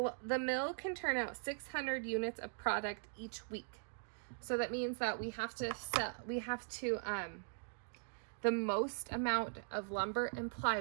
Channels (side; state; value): left; silent; digital silence